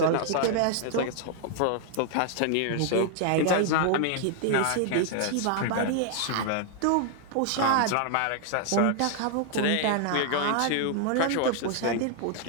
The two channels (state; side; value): different; both; correlation 0.00